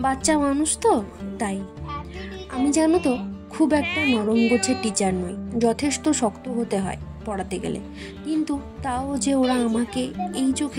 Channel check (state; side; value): identical; both; correlation 1.00